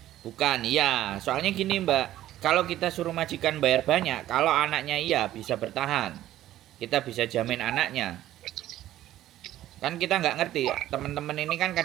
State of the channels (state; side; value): quieter; left; 13.6 dB